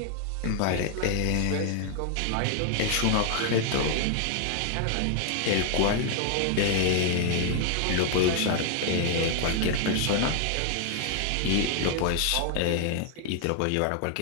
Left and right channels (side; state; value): both; different; correlation 0.00